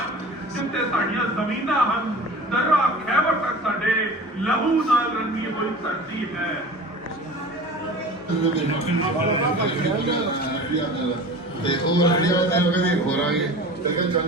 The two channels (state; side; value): normal; both; correlation 0.38